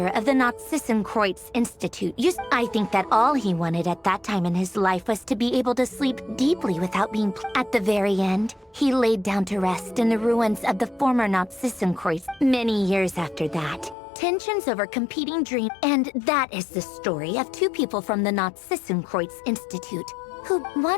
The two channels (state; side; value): drops out; right; at 14.0 s